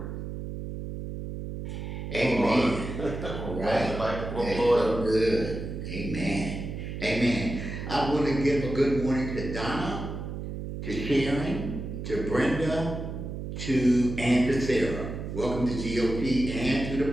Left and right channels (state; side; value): noise; right; hum, 6 dB below the sound